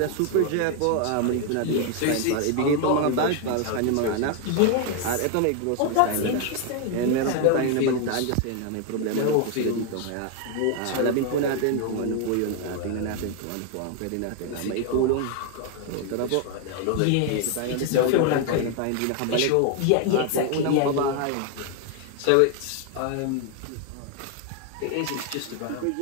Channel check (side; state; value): both; different; correlation 0.01